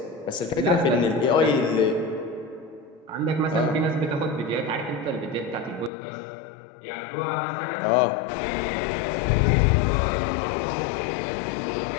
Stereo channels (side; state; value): right; drops out; at 5.9 s